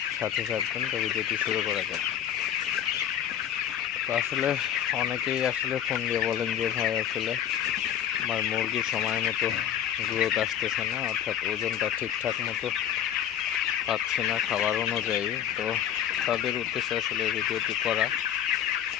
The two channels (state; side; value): quieter; right; 10.0 dB